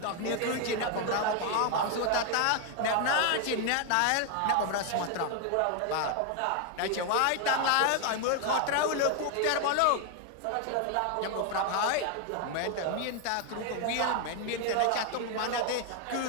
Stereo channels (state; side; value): different; both; correlation 0.01